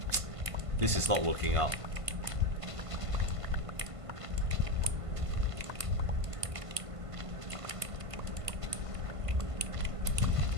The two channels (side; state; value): left; late; 1.5 ms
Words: This is not working out.